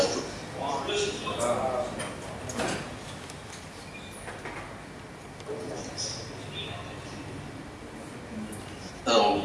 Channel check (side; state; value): both; identical; correlation 1.00